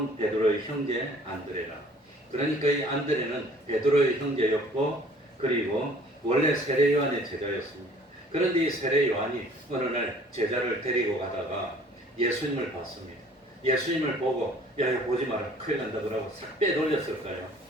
베드로의 형제 안드레라. 그러니까 이 안드레는 베드로의 형제였고 그리고 원래 세례 요한의 제자였습니다. 그런데 이 세례 요한이 어느 날 제자를 데리고 가다가 예수님을 봤습니다. 예수님을 보고 야 보지 마라 큰일 난다 그러고 싹 빼돌렸을까요?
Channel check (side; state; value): both; normal; correlation 0.54